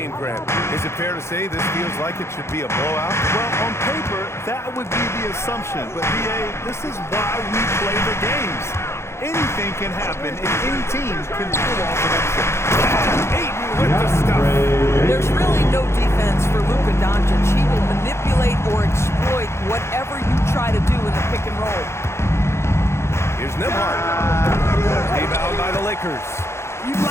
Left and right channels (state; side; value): late; right; 0.13 ms